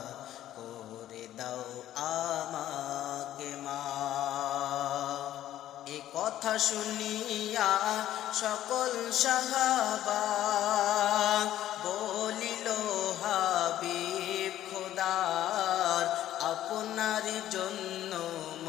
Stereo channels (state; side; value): quieter; right; 12.7 dB